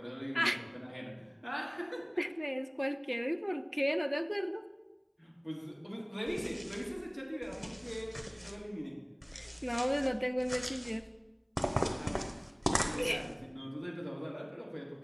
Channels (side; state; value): both; identical; correlation 1.00